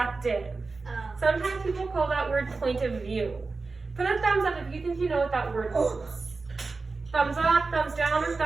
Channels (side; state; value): left; quieter; 4.0 dB